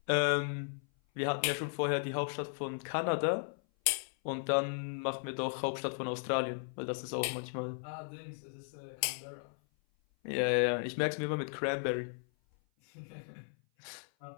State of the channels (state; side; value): silent; right; 54 dB below the other